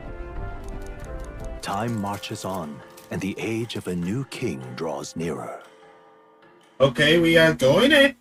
Time marches on, and the age of a new king draws nearer. Okay, we are going in.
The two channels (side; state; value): both; identical; correlation 1.00